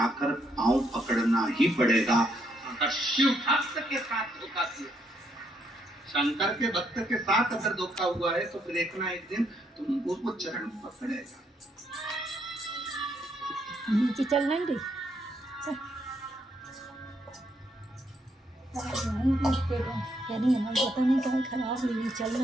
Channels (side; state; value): both; normal; correlation 0.74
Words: पांव पकड़ना ही पड़ेगा। अगर शिव भक्त के साथ धोखा किया, शंकर के भक्त के साथ अगर धोखा हुआ है, तो फिर एक ना एक दिन तुम उसको चरण पकड़ेगा। नीचे चल नहीं रही, क्या नहीं है, पता नहीं क्या खराब हुई, चल